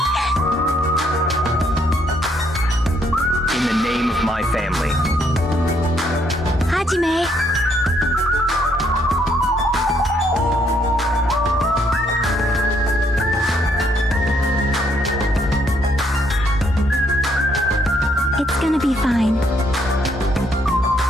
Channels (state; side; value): normal; both; correlation 0.70